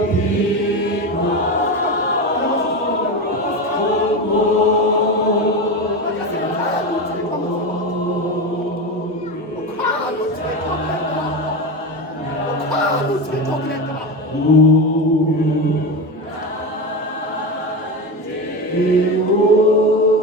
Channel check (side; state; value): both; normal; correlation 0.20